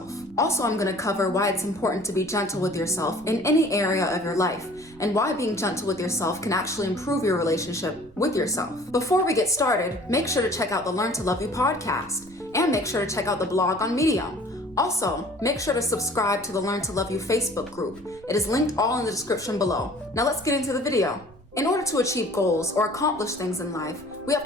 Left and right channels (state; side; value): noise; right; rumble, 23 dB below the sound